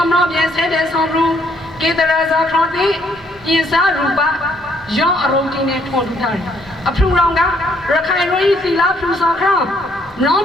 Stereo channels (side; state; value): both; normal; correlation 0.68